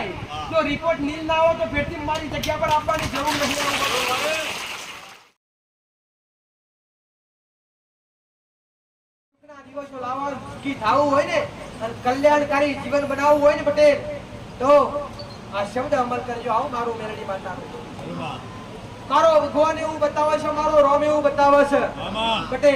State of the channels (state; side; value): identical; both; correlation 1.00